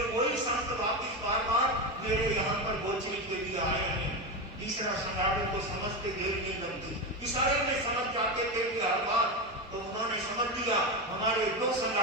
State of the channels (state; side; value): noise; right; hum, 23 dB below the sound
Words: वही संत वापिस बार बार मेरे यहाँ पर गोचरी के लिए आए हैं। तीसरा संगाड़े को समझते देर नहीं लगती, इशारे में समझ जाते थे कि हर बार, तो उन्होंने समझ लिया हमारे दो